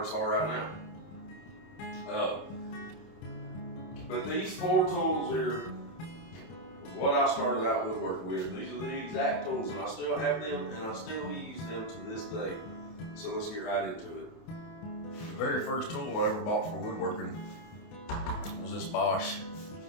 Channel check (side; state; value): right; late; 28 ms